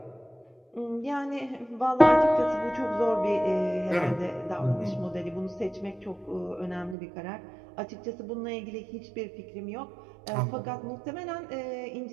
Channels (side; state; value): left; drops out; at 7.0 s